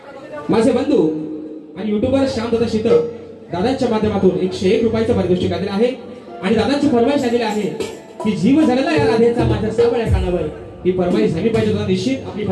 माझे बंधू आणि युट्यूबर श्यामदादा शीतळ दादांच्या माध्यमातून 101 रुपयाचं पारितोषिक आलेलं आहे. आणि दादांची फरमाईश आलेली आहे की जीव झालेला या राधेचा माझ्या सावळ्या कानावर. ही फरमाईश झाली पाहिजे. दादा निश्चित आपली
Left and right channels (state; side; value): identical; both; correlation 1.00